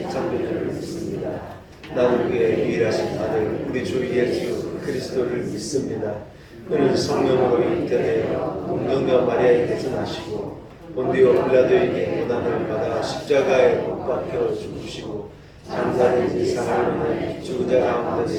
창조주를 믿습니다. 나는 그의 유일하신 아들 우리 주 예수 그리스도를 믿습니다. 그는 성령으로 잉태되어 동정녀 마리아에게서 나시고 본디오 빌라도에게 고난을 받아 십자가에 못 박혀 죽으시고 장사된 지 사흘 만에 죽은 자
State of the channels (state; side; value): identical; both; correlation 1.00